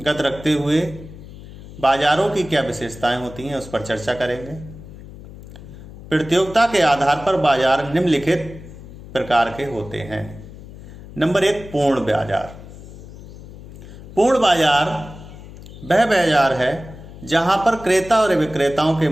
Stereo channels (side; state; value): left; noise; hum, 16 dB below the sound